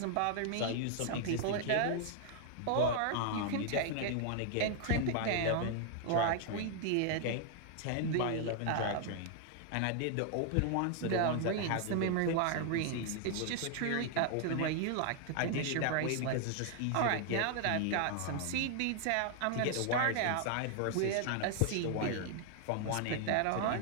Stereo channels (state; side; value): different; both; correlation 0.00